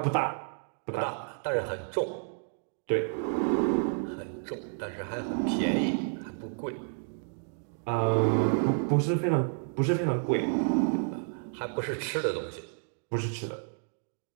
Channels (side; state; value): left; silent; 57 dB below the other